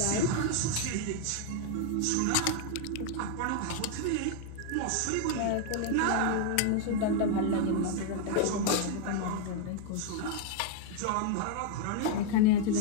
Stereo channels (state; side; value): different; both; correlation 0.00